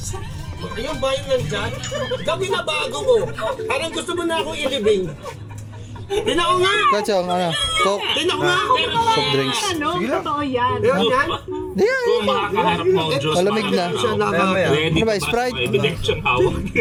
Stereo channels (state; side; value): identical; both; correlation 1.00